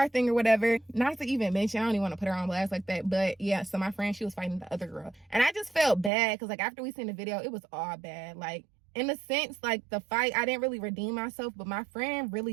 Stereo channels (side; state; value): left; drops out; at 6.1 s